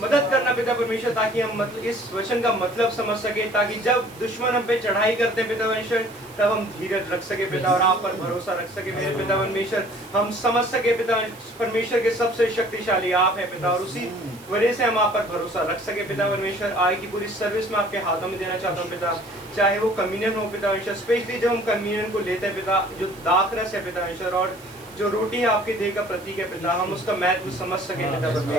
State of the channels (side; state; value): right; noise; hiss, 22 dB below the sound